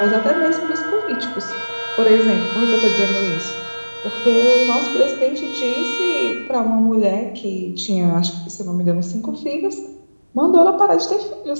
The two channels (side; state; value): both; inverted; correlation -1.00